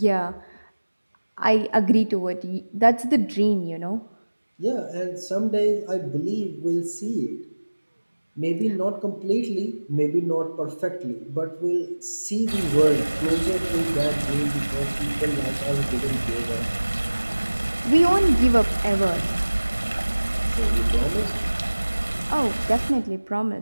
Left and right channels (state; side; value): inverted; both; correlation -1.00